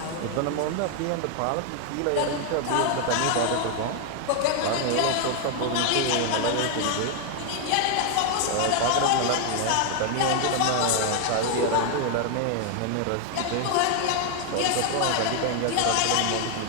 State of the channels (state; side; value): different; both; correlation 0.00